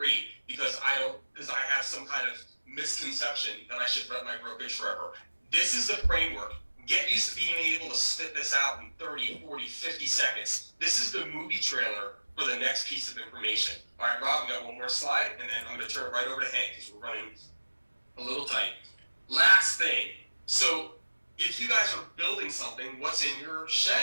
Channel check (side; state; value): both; inverted; correlation -1.00